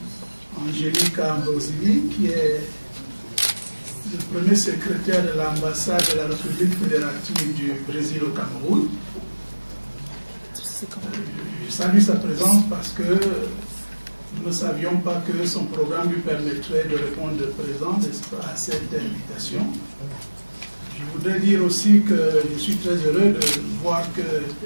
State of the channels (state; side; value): inverted; both; correlation -1.00